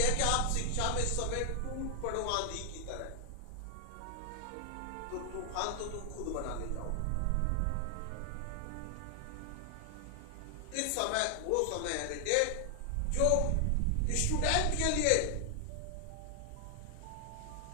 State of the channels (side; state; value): both; different; correlation 0.00